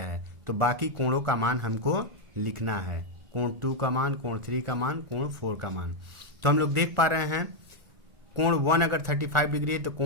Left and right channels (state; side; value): late; left; 1.4 ms